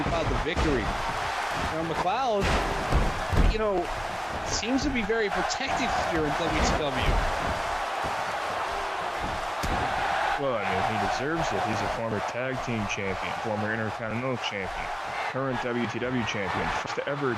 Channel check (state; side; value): identical; both; correlation 1.00